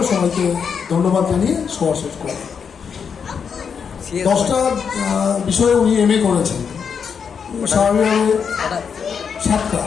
সবাইকে ধন্যবাদ জানিয়ে সভা শেষ করেন। 10টা বিষয়ে উনি MA করেছেন, স্বাভাবিকভাবে 7টা।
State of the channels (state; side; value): quieter; right; 6.6 dB